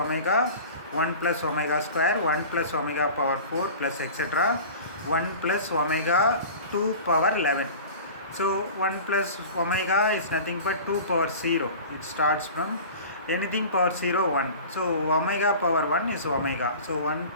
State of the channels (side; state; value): both; inverted; correlation -0.38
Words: 1 plus omega square, 1 plus omega power 4 plus etc. 1 plus omega 2 power 11. So 1 plus omega is nothing but 2 power 0. It starts from anything power 0, 1. So omega power 1 is omega. So 1